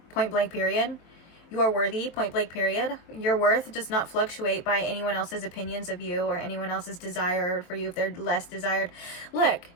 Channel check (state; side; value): late; right; 23 ms